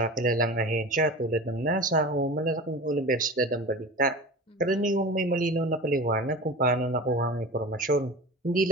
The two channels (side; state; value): both; normal; correlation 0.33